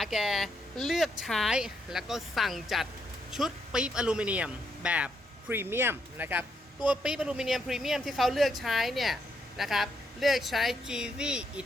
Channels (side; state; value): both; normal; correlation 0.77